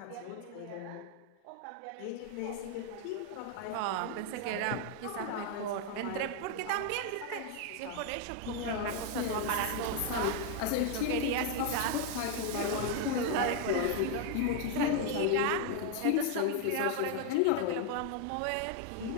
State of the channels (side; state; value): both; different; correlation 0.01